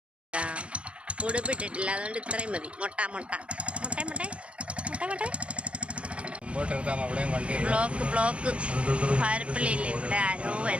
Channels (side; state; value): left; late; 0.060 ms